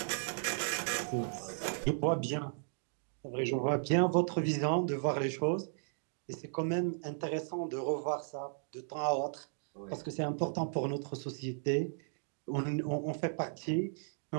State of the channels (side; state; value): left; silent; digital silence